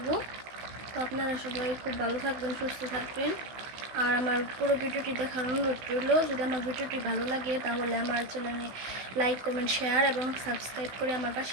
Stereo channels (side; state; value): left; late; 16 ms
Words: তো আপনারা সবাই খুব ভালো থাকবেন, সুস্থ থাকবেন। আর আমার পুরো ভিডিওটি দেখার অনুরোধ রইল। যদি আমার ভিডিওটি ভালো লাগে তাহলে আমার চ্যানেলে লাইক, কমেন্ট, শেয়ার এবং সাবস্ক্রাইব করে আমার